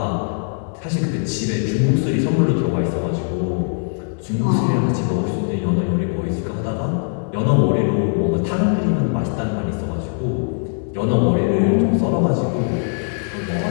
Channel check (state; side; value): silent; right; 59 dB below the other